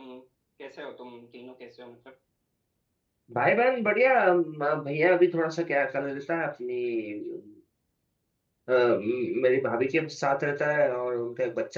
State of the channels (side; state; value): both; identical; correlation 1.00